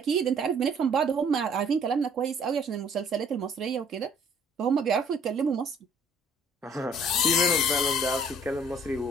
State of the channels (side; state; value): both; normal; correlation 0.58